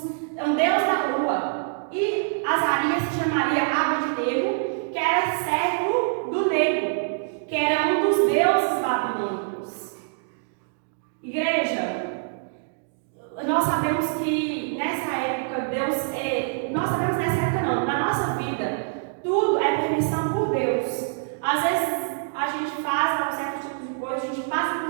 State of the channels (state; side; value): silent; left; digital silence